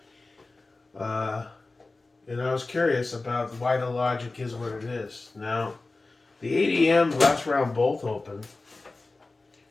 Uh, and I was curious about why the logic is what it is. Now, the ADM last round bolt open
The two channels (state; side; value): quieter; right; 3.4 dB